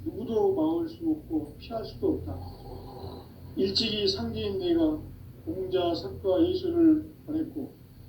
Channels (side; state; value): both; identical; correlation 1.00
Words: 누구도 막을 수 없고 피할 수도 없다. 일찍이 상제인 내가 공자, 석가, 예수를 보냈고